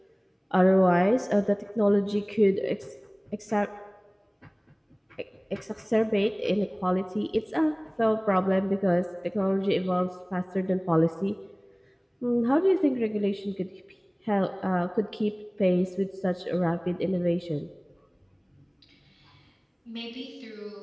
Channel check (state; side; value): identical; both; correlation 1.00